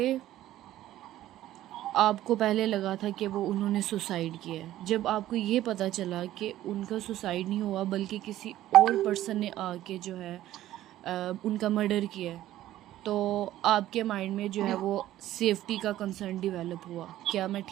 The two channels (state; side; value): quieter; left; 13.9 dB